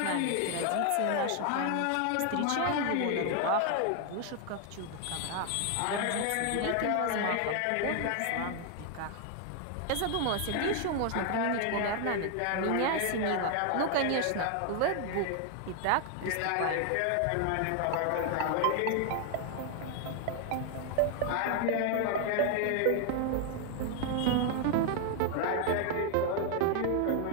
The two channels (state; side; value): different; both; correlation 0.00